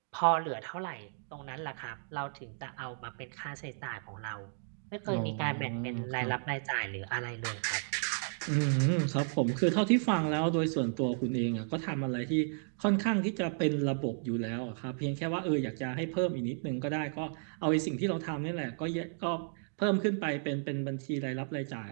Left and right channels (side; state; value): left; silent; digital silence